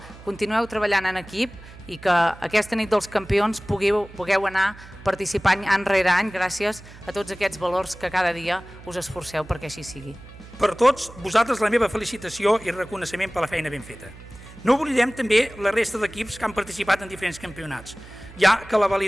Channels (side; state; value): right; noise; hum, 18 dB below the sound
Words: continueu treballant en equip i que aquesta nit dels campions pugueu anar participant any rere any gràcies a tots aquests valors que cada dia us esforceu perquè així sigui. Per tots vosaltres la meva felicitació i reconeixement per la feina ben feta. No oblidem també la resta d'equips que han participat en diferents campionats, ja que la